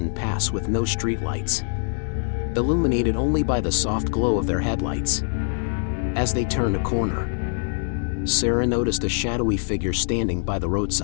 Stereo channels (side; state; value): right; silent; 63 dB below the other